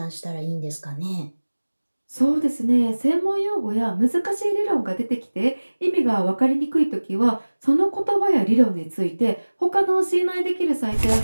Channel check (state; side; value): inverted; both; correlation -1.00